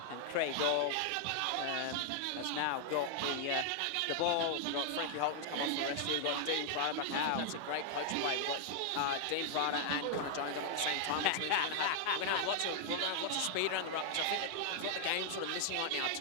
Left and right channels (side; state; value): both; different; correlation 0.00